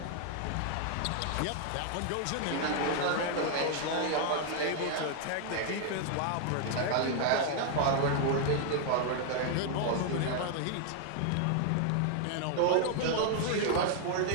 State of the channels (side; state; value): both; different; correlation 0.00